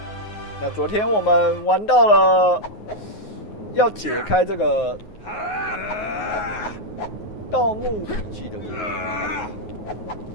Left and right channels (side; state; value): right; late; 9.5 ms